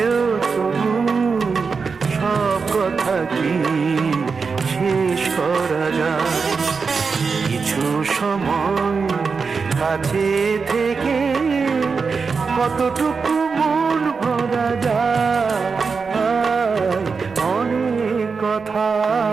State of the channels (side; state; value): left; quieter; 5.0 dB